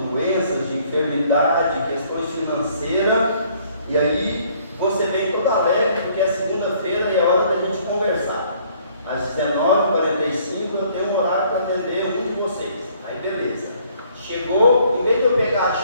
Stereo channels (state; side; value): inverted; both; correlation -0.62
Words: de enfermidade, questões financeiras, e aí você vem todo alegre, porque é segunda-feira e é hora da gente conversar. Às 19h45 eu tenho um horário para atender um de vocês. Aí beleza. Chegou, em vez de eu pegar a